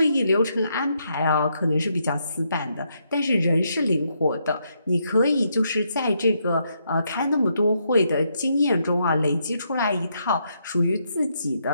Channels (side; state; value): both; inverted; correlation -0.77